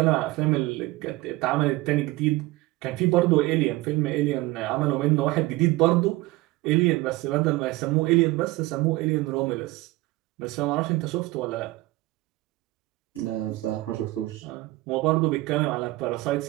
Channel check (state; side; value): quieter; left; 19.9 dB